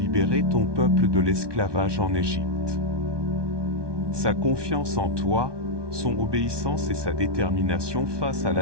ton peuple de l'esclavage en Égypte. Sa confiance en toi, son obéissance et sa détermination face à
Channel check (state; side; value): late; left; 1.2 ms